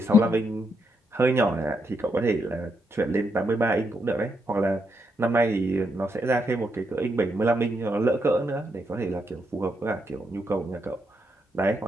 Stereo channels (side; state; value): both; normal; correlation 0.80